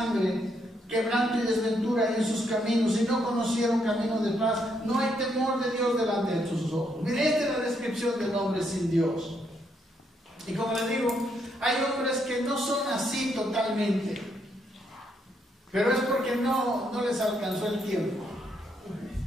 Quebranto y desventura en sus caminos, y no conocieron camino de paz. No hay temor de Dios delante de sus ojos. Mire, esta es la descripción del hombre sin Dios. Y como les digo, hay hombres que no son así totalmente, pero es porque no les alcanzó el tiempo.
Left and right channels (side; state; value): both; normal; correlation 0.75